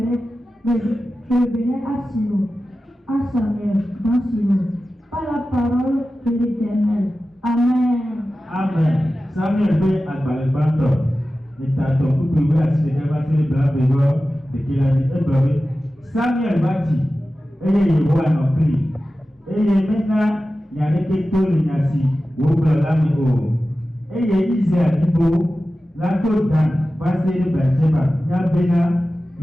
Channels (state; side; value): normal; both; correlation 0.94